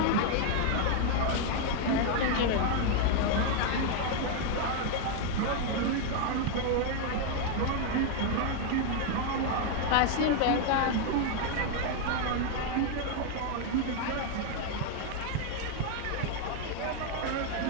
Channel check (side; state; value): both; different; correlation 0.00